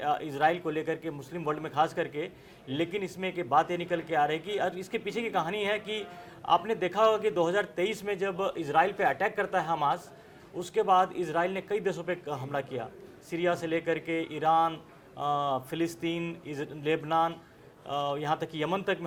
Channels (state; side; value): identical; both; correlation 1.00